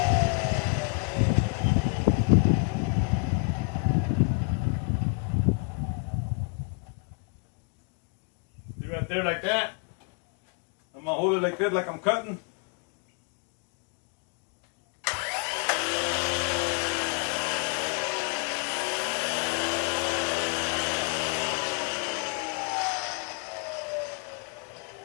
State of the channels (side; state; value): right; quieter; 37.2 dB